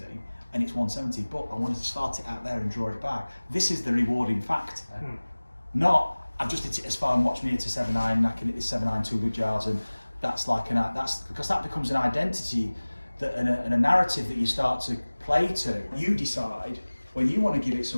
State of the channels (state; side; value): inverted; both; correlation -1.00